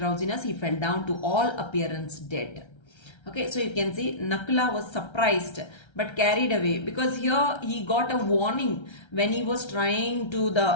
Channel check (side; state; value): right; late; 1.3 ms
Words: he fell down to all appearance dead. Okay, so you can see Nakula was surprised but carried away because here he got a warning when he was trying to